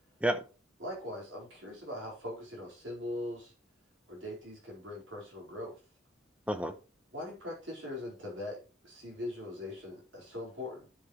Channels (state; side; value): normal; both; correlation 0.60